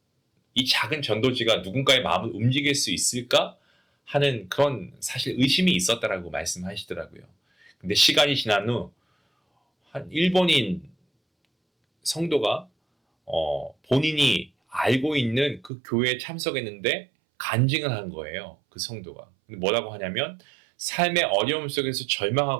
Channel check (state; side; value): drops out; left; at 15.7 s